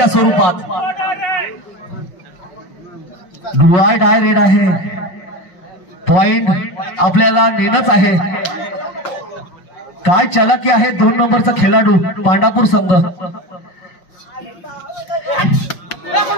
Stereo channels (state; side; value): late; right; 5.5 ms